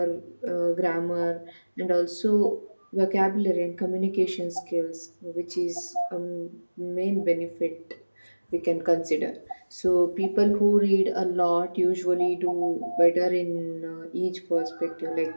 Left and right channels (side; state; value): both; inverted; correlation -1.00